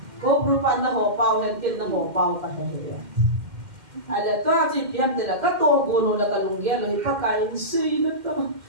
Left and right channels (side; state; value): left; late; 2.1 ms